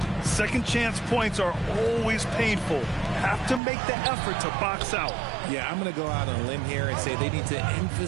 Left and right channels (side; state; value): left; drops out; at 3.6 s